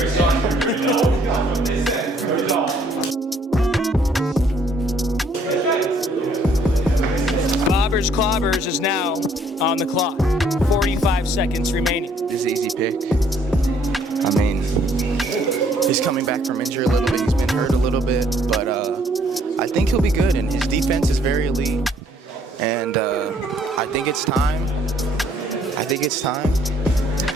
Bobbers Clobbers is now on the clock. 45 seconds remaining. This is an easy pick. I mean, he's coming back from injury a little bit. He's been hurt a little bit, but I think he'll be good. And his defense is very elite. And I think it's time. I think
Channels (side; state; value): both; normal; correlation 0.64